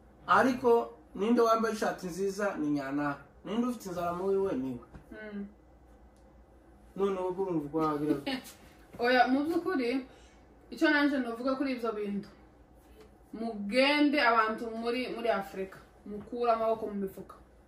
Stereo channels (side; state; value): both; identical; correlation 1.00